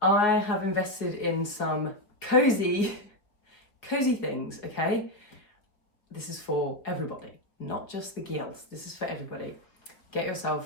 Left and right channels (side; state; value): right; late; 4.6 ms